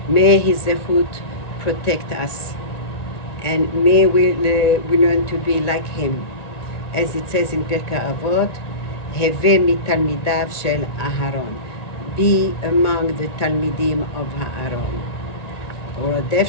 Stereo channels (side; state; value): right; late; 1.9 ms